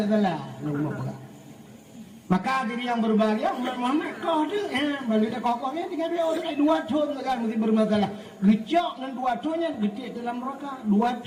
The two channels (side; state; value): both; identical; correlation 1.00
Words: salah, rumah pegang. Maka diri yang berbahagia umat Muhammad kau tu balik dah kau ni tinggal dia orang 2 tahun kan mesti bermasalah gecok dengan 2 tahunnya getik dalam neraka 2